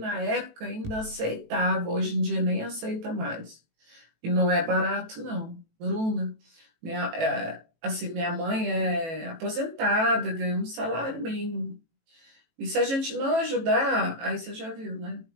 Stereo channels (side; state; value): left; late; 18 ms